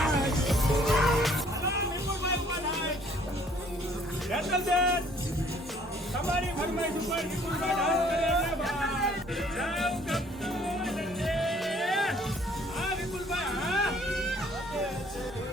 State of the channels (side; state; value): both; normal; correlation 0.60